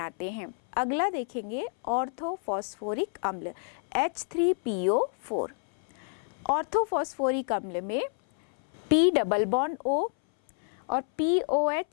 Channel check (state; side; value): silent; right; 59 dB below the other